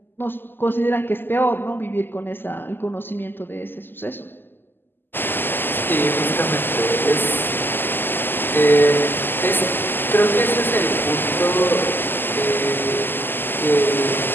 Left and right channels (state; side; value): late; right; 0.096 ms